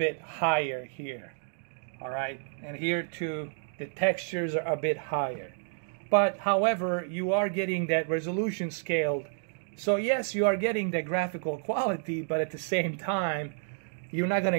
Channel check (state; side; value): silent; left; digital silence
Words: higher here. All right, and here too, the textures are a bit higher. But however, you are getting that resolution scaled. So yes, you are getting the graphical quality, but at the same time, you're not going to